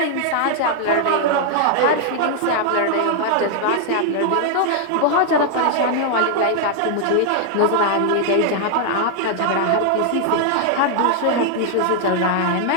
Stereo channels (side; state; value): both; different; correlation 0.00